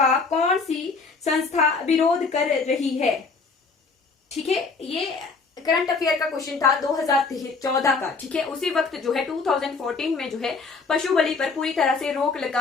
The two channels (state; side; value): quieter; right; 4.4 dB